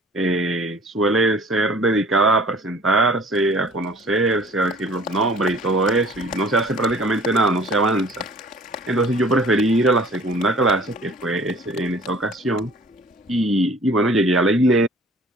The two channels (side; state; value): both; normal; correlation 0.50